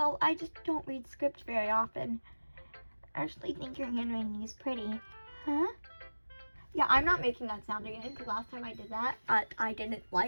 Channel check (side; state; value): both; inverted; correlation -1.00